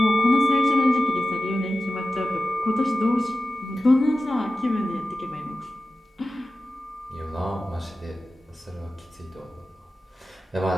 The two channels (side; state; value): both; normal; correlation 0.94